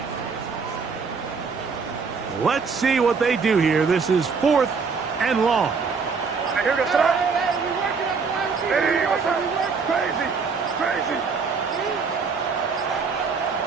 Let's see what they do here. This is 4th and long. Here to start. Hey, what's up? Crazy. Crazy.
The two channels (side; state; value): left; quieter; 5.2 dB